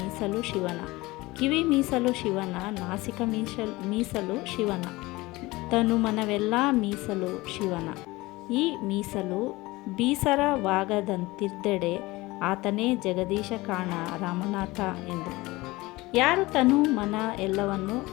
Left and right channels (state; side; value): quieter; right; 20.9 dB